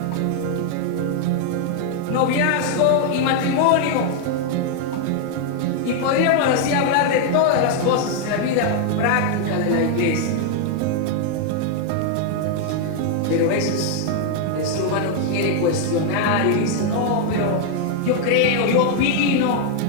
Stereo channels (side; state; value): both; different; correlation 0.00